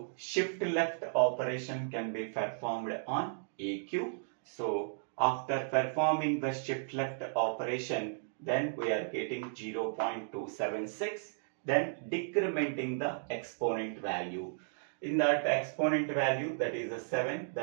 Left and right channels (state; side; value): silent; left; digital silence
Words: shift left operation can be performed on AQ. So after performing the shift left operation, then we are getting 0.276, then decrementing the exponent value. In that exponent value, that is a 7,